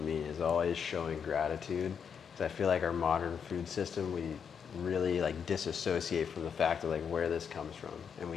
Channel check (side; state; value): right; quieter; 7.0 dB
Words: me, is always showing gratitude. Because I feel like our modern food system, we really like disassociate from the fact of like where this comes from,